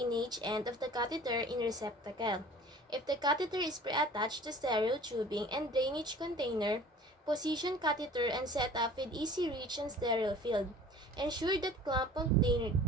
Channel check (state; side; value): normal; both; correlation 0.46